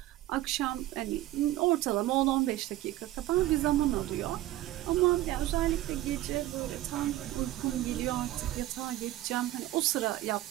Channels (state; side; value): quieter; left; 15.4 dB